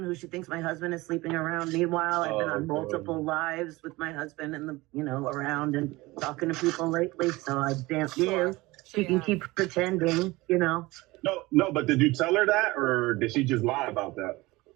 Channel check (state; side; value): quieter; left; 21.0 dB